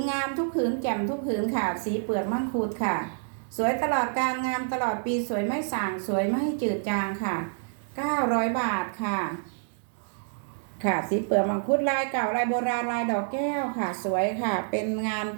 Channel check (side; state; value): left; silent; digital silence